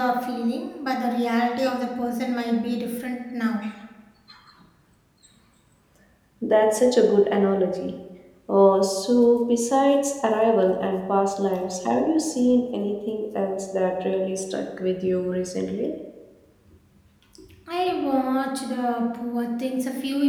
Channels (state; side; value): identical; both; correlation 1.00